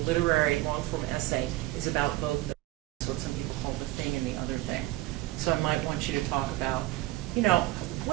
literary long form essay is about both. That's what some people call the thing and the other thing. So I might want you to talk about,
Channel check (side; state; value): left; quieter; 17.6 dB